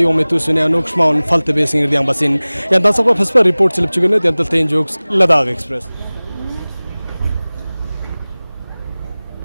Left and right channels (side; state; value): both; inverted; correlation -0.99